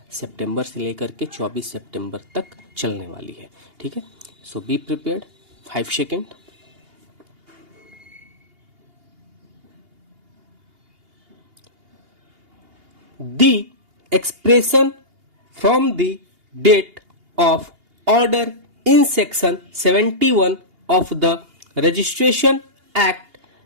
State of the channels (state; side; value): late; left; 2.8 ms